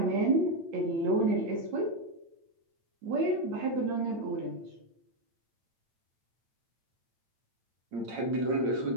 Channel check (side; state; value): left; late; 8.8 ms